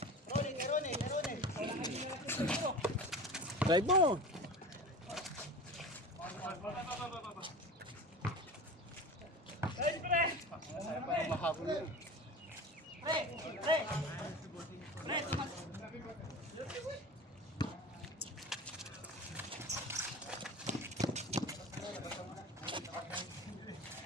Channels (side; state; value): both; normal; correlation 0.33